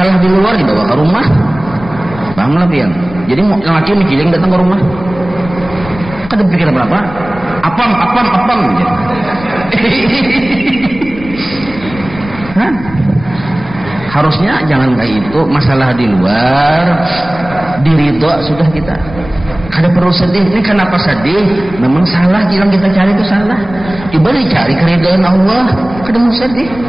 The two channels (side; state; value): left; noise; rumble, 15 dB below the sound